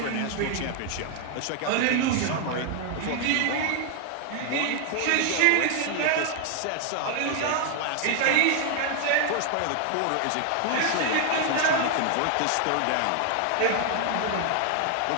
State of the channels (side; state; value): both; different; correlation 0.00